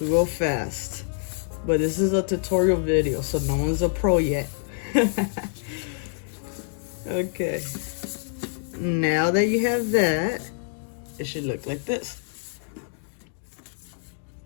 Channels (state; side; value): silent; right; digital silence